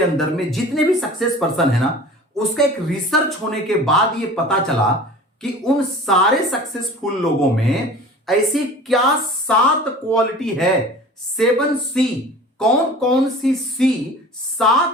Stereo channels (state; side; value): normal; both; correlation 0.41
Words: अंदर में जितने भी सक्सेस पर्सन है ना, उसका एक रिसर्च होने के बाद ये पता चला कि उन सारे सक्सेसफुल लोगों में ऐसी क्या 7 क्वालिटी है। 7C कौन कौन सी